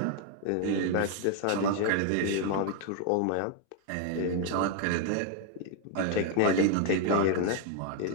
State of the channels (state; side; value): different; both; correlation 0.00